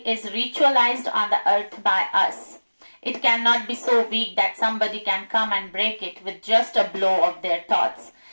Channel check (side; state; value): both; inverted; correlation -1.00